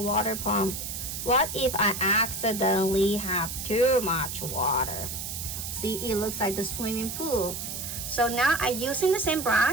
water pump. What if I accidentally have too much water? See, it looks like the swimming pool. So now I'm using the same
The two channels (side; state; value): right; noise; hiss, 6 dB below the sound